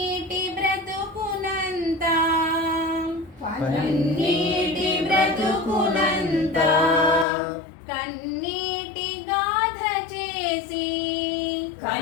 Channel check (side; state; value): right; drops out; at 7.2 s